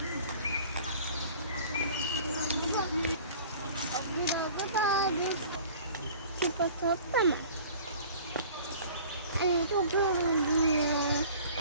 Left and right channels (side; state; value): both; inverted; correlation -0.46